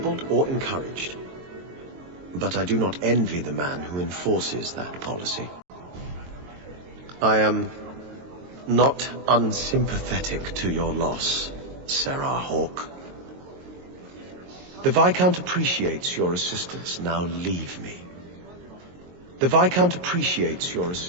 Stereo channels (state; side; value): late; left; 22 ms